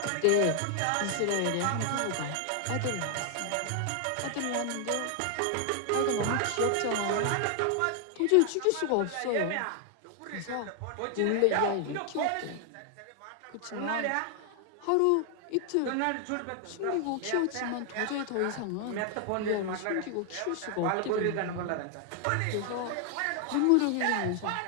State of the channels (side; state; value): both; different; correlation 0.00